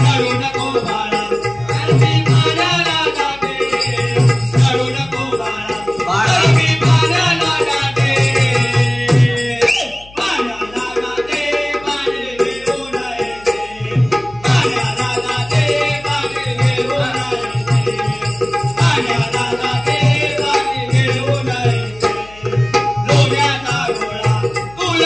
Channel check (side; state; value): left; noise; hum, 22 dB below the sound